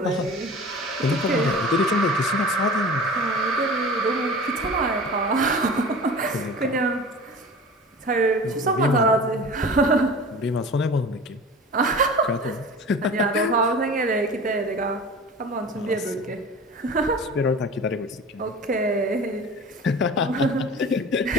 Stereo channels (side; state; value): both; normal; correlation 0.38